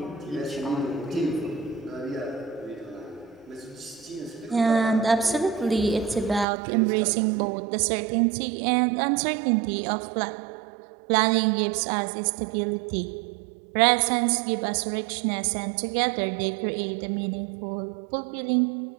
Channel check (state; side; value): drops out; left; at 6.5 s